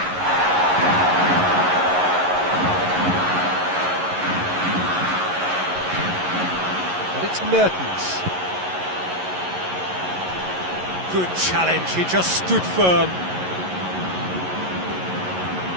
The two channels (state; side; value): late; left; 11 ms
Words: And it's Mertens. Good challenge, he just stood firm.